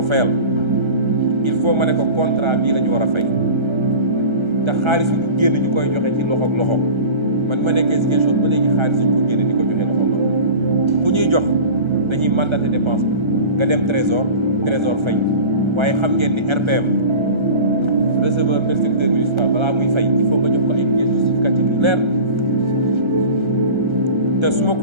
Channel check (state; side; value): late; left; 1.3 ms